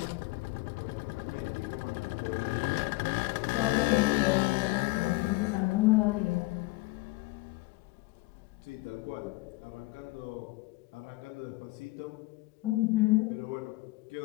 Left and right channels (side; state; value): right; quieter; 22.0 dB